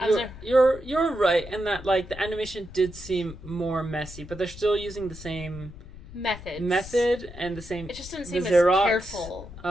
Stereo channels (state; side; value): noise; left; rumble, 15 dB below the sound